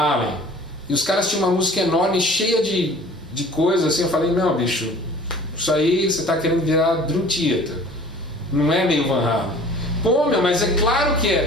e os caras tinham uma música enorme, cheia de coisas, assim, eu falei, não, bicho, isso aí você está querendo virar Dream Theater, não é meio Van Halen. Pô, meu, mas é claro que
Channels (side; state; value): both; normal; correlation 0.47